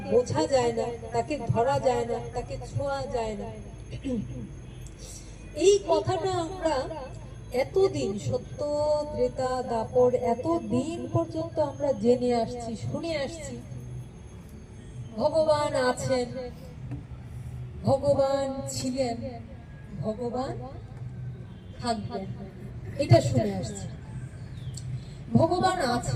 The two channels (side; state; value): both; identical; correlation 1.00